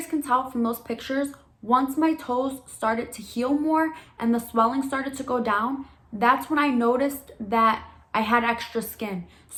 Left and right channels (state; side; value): identical; both; correlation 1.00